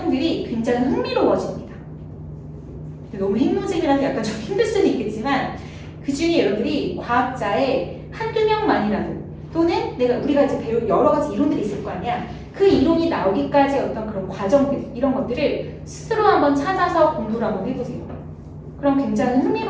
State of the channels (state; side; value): identical; both; correlation 1.00